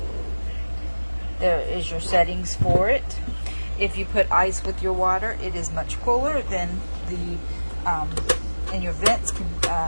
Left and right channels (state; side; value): inverted; both; correlation -1.00